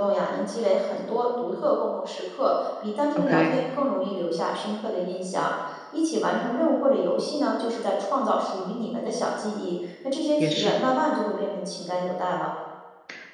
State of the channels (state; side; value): identical; both; correlation 1.00